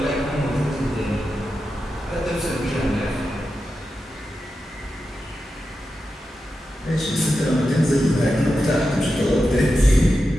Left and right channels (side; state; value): both; normal; correlation 0.90